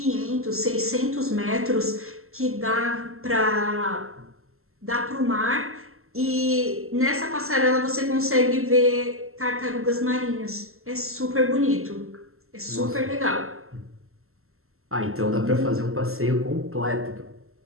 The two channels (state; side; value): late; left; 0.62 ms